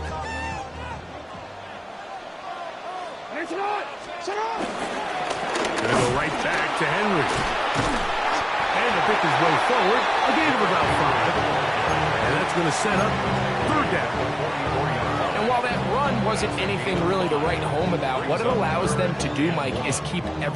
Gonna go right back to Henry. And to pick his way forward, a gain of about 5. And that's going to set up third down. And while that run wasn't anything really to write home about, what it allows them to do, Mike, is keep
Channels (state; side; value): identical; both; correlation 1.00